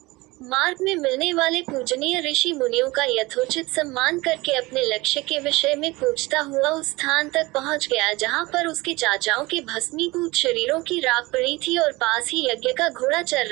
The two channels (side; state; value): left; quieter; 22.0 dB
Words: मार्ग में मिलने वाले पूजनीय ऋषि मुनियों का यथोचित सम्मान करके अपने लक्ष्य के विषय में पूछता हुआ उस स्थान तक पहुंच गया जहां पर उसके चाचाओं के भस्मीभूत शरीरों की राख पड़ी थी और पास ही यज्ञ का घोड़ा चल